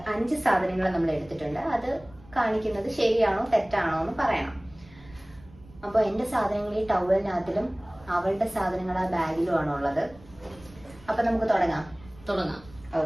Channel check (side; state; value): right; noise; rumble, 23 dB below the sound